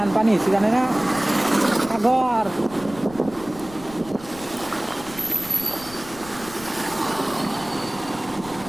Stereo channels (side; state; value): left; noise; rumble, 18 dB below the sound